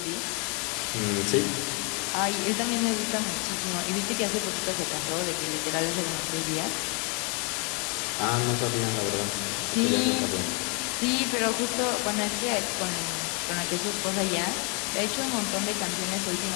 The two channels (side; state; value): right; quieter; 34.5 dB